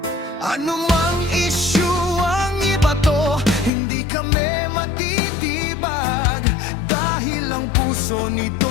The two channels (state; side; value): drops out; right; at 3.7 s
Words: Anumang issue ang ibato, hindi kami matitibag. Dahil ang puso ni